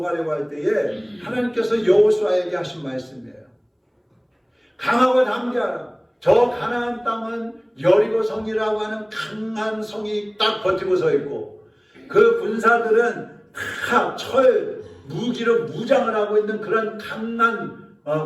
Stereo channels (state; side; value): identical; both; correlation 1.00